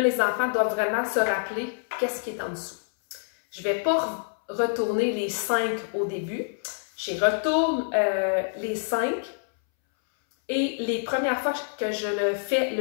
les enfants doivent vraiment se rappeler qu'est-ce qui est en dessous. Je ne vais pas retourner les 5 au début. Je retourne les 5 et les premières fois que je le fais,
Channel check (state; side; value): silent; right; 61 dB below the other